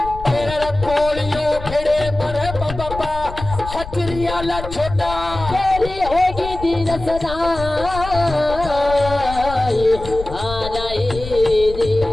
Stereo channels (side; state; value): left; noise; rumble, 10 dB below the sound